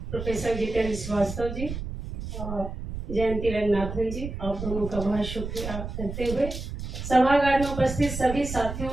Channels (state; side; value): noise; right; rumble, 7 dB below the sound